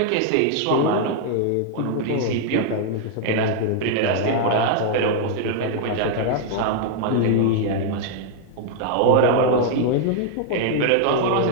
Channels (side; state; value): both; different; correlation 0.00